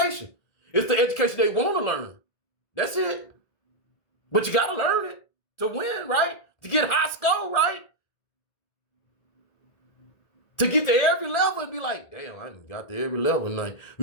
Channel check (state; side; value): late; right; 1.9 ms